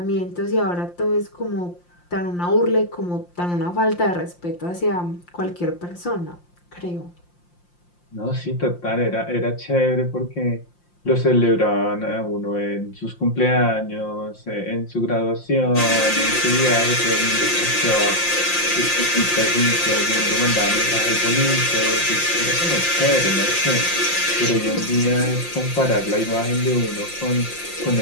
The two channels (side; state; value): right; late; 5.7 ms